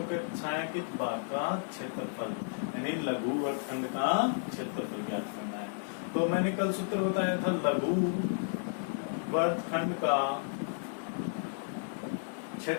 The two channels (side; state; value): right; silent; digital silence